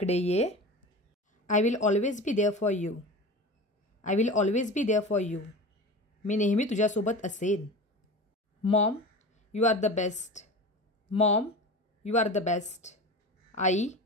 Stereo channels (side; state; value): both; normal; correlation 0.32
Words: ये. I will always be there for you. I will always be there for you. मी नेहमी तुझ्यासोबत असेन. Mom you are the best. Mom you are the best. आई